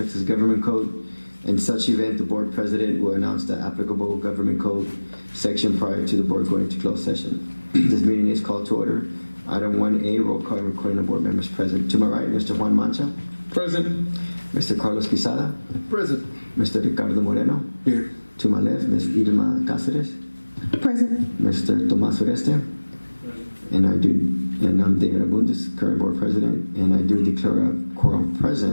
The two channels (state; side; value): inverted; both; correlation -1.00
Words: Government Code. In such event, the board president will announce the applicable government code section prior to the board going into closed session. This meeting is called to order. Item 1A, roll call and recording of board members present. To my right, Mr. Juan Mancha. Present. Mr. Carlos Quezada. Present. Mr. Ricardo Moreno. Here. To my left, Ms. Irma Cáceres. Present. Mr. Tomás Oreste. And I'm David Abundis, current board president, and I do declare a quorum